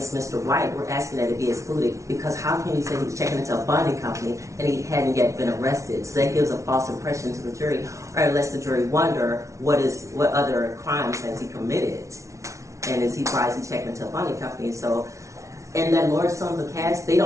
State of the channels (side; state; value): left; late; 0.14 ms